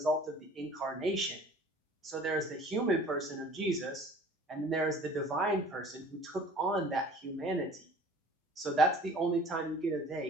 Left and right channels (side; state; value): both; normal; correlation 0.48